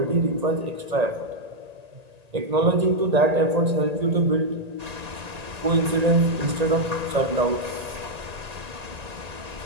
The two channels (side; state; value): left; late; 1.8 ms